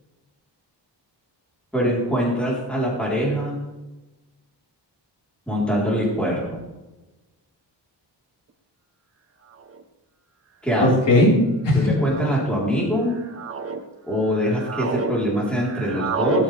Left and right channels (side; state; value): both; normal; correlation 0.38